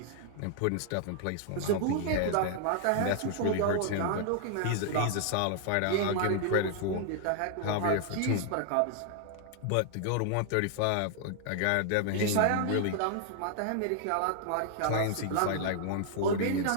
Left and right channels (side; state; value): both; different; correlation 0.00